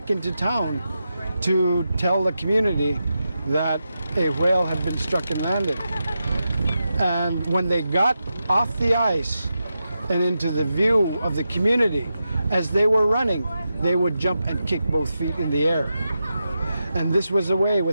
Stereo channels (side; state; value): both; inverted; correlation -0.88